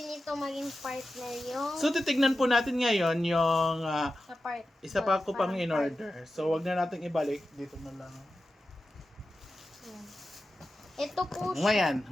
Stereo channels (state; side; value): normal; both; correlation 0.92